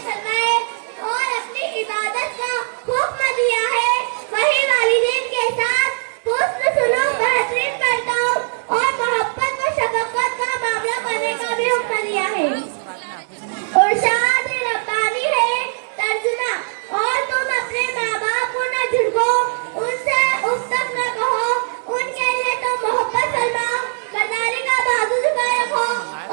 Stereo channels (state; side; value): silent; left; digital silence